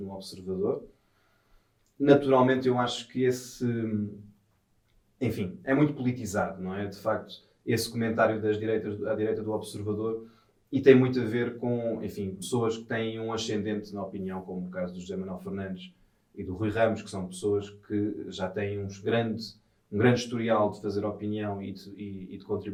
Observador. Naturalmente, eu acho que enfim, é muito politizado, não é? De facto, esse comentário da direita do Observador, e tem muito a ver com, enfim, pessoas que têm um ascendente na opinião, como o caso do José Manuel Fernandes e do Rui Ramos, que são pessoas que já têm um grande historial de fazer opinião e de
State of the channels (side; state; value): both; identical; correlation 1.00